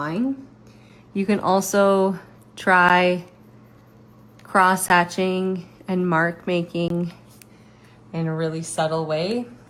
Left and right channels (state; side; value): identical; both; correlation 1.00